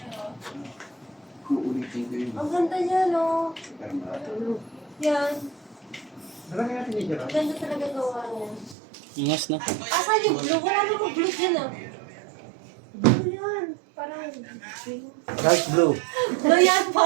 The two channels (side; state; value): left; drops out; at 8.8 s